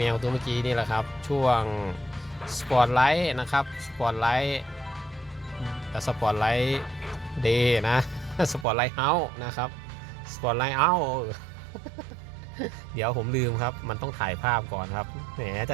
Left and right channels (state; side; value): drops out; left; at 8.7 s